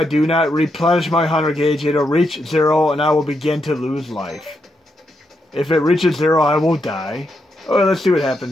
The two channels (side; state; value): both; normal; correlation 0.82